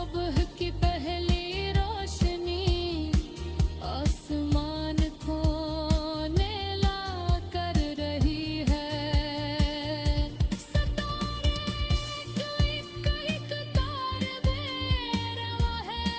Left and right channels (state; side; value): identical; both; correlation 1.00